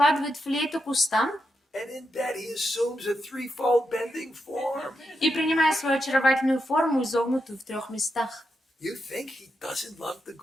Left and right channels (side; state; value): both; normal; correlation 0.85